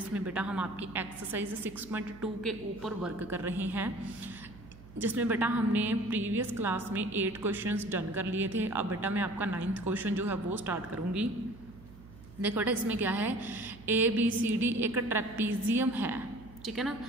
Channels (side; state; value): right; noise; hum, 19 dB below the sound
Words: बेटा हम आपकी एक्सरसाइज 6.2 के ऊपर वर्क कर रहे हैं, जिसमें बेटा हमने प्रीवियस क्लास में 8 क्वेश्चंस डन कर लिए थे। अब बेटा मैं आपका 9th क्वेश्चन जो है वो स्टार्ट करूँगी। देखो बेटा इसमें क्या है, ABCD एक ट्रेपीजियम है, ठीक है ना,